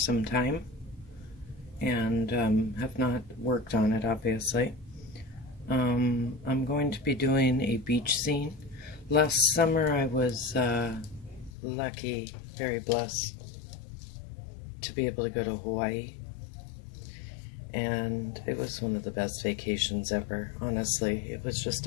time and have not worked on it, obviously. I'm going to be doing a beach scene. Last summer I was lucky, very blessed, to be able to go to Hawaii. And it was one of the best vacations ever, honestly. It was just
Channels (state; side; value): drops out; right; at 11.5 s